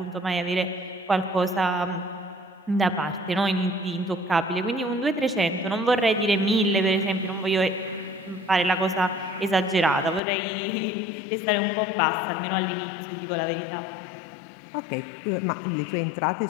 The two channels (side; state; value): right; drops out; at 10.2 s